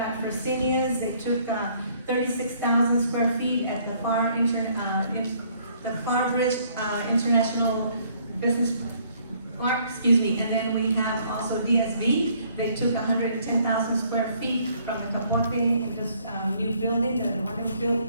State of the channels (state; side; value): inverted; both; correlation -0.64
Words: Fresenius. They took 36,000 square feet at the Pharr Bridge International Business Park. And then we have also DSV, They took 110,000 square feet from the Capote, this new building that was built